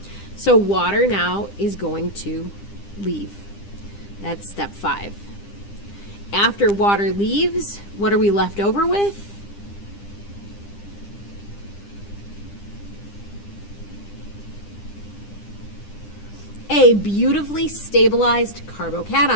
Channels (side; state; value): right; late; 9.9 ms